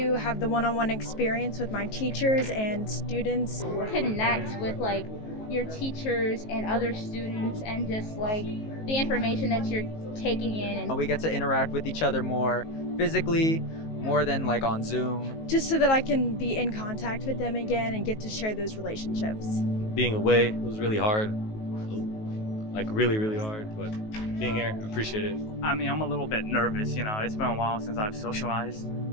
have the one-on-one experience with my teachers and students. Connect with your teachers and other students and just the information that you're taking in. And we get to interact with each other more physically, more than on Zoom. Just so that I can be in contact with them again and get to share those relationships. Being away, it was really hard. Really, really hard, but being here, I appreciate it. I mean, I'm a little bit nervous, it's been a while since I've socialized,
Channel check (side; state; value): right; late; 19 ms